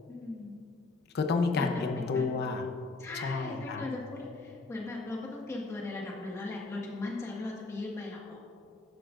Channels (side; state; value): right; quieter; 3.4 dB